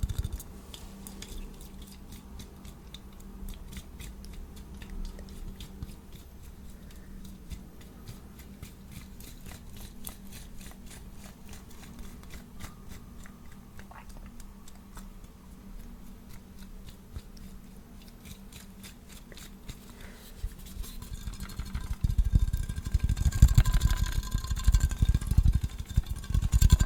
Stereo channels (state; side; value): identical; both; correlation 1.00